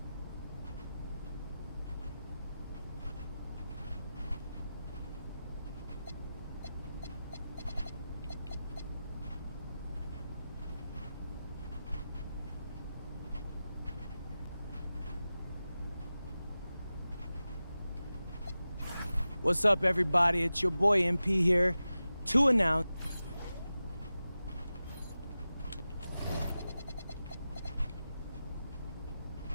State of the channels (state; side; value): inverted; both; correlation -0.93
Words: What's up, everybody? It's your boy MP here to announce.